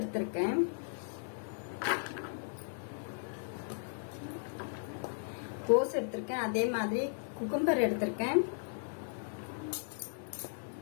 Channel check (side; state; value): right; silent; digital silence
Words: அதே மாதிரி குக்கும்பர் எடுத்திருக்கேன்,